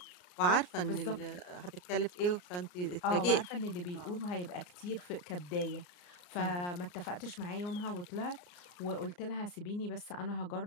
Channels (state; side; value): late; right; 34 ms